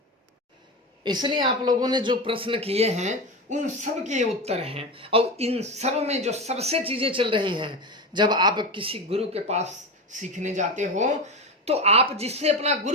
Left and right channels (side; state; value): both; normal; correlation 0.20